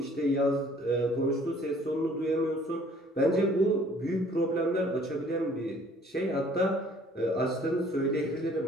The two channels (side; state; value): both; normal; correlation 0.57